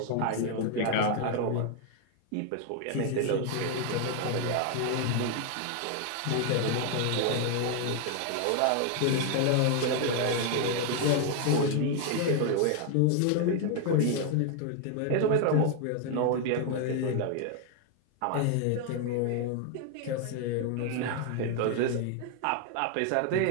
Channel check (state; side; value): different; both; correlation 0.00